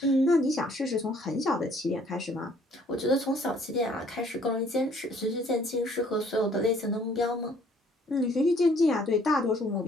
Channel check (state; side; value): normal; both; correlation 0.60